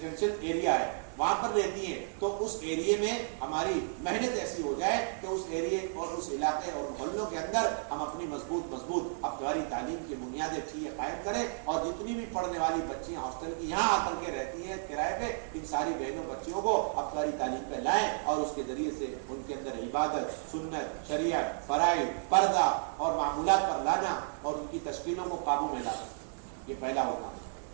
ایریا ہے وہاں پر رہتی ہیں, تو اس ایریے میں ہماری محنت ایسی ہو جائے کہ اس ایریے اور اس علاقے اور محلوں کے اندر ہم اپنی مضبوط ہفتہ واری تعلیم کی بنیادیں چیزیں قائم کریں. اور جتنی بھی پڑھنے والی بچیاں ہاسٹل کی یہاں آ کر کے رہتی ہیں کرائے پہ, ان ساری بہنوں بچیوں کو ہفتہ واری تعلیم پہ لائیں, اور اس کے ذریعے سے ان کے اندر عبادت, سنت, شریعت, فرائض, پردہ اور معمولات پر لانا, اور ان کی تشکیلوں کو قابو میں لانا. یہ پہلا ہوگا.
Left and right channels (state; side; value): silent; left; digital silence